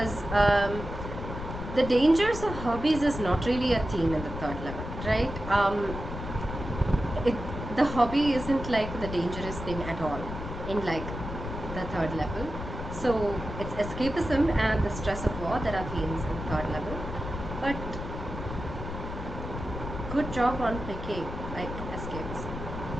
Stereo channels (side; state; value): left; noise; rumble, 7 dB below the sound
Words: the dangers of hobbies is not really a theme in the third level, right? The hobby isn't like the dangerous thing at all in like the third level. So it's escapism and the stress of war that are themes in the third level. But good job on picking like escapism.